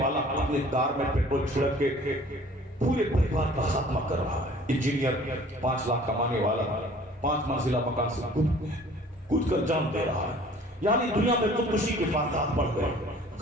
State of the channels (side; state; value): both; normal; correlation 0.50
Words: والا اپنے کار میں پیٹرول چھڑک کے پورے پریوار کا خاتمہ کر رہا ہے۔ انجینئر 5 لاکھ کمانے والا 5 منزلہ مکان سے کود کر جان دے رہا ہے۔ یعنی دنیا میں خودکشی کے واقعات بڑھ گئے۔